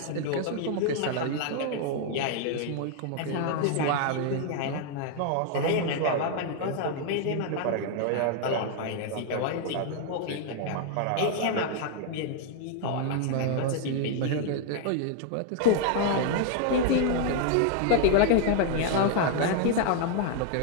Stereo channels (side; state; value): both; different; correlation 0.00